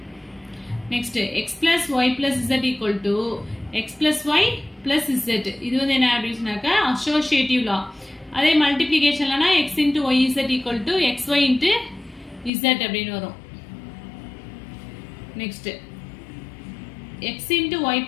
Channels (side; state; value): right; drops out; at 12.5 s